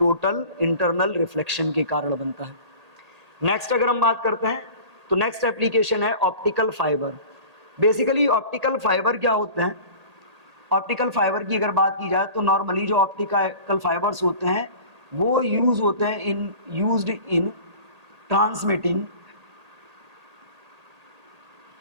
इंटरनल रिफ्लेक्शन के कारण बनता है। नेक्स्ट अगर हम बात करते हैं तो नेक्स्ट एप्लीकेशन है optical fibre. Basically optical fibre क्या होते हैं? ऑप्टिकल फाइबर की अगर बात की जाए तो नॉर्मली जो ऑप्टिकल फाइबर्स होते हैं वो यूज होते हैं used in transmitting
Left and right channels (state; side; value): late; left; 1.8 ms